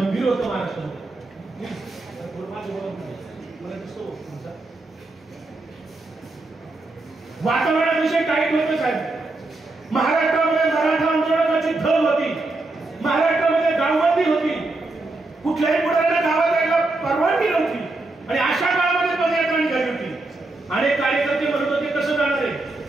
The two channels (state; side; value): quieter; left; 3.0 dB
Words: होतं महाराष्ट्रामध्ये. वातावरणाविषयी टाईट होतं साहेब. महाराष्ट्रामध्ये मराठा आंदोलनाची धग होती, महाराष्ट्रामध्ये गावबंदी होती, कुठल्याही पुढाऱ्याला गावात यायला परवानगी नव्हती. आणि अशा काळामध्ये पदयात्रा निघाली होती. अनेक कार्यकर्ते म्हणत होते कसं जाणार आहे,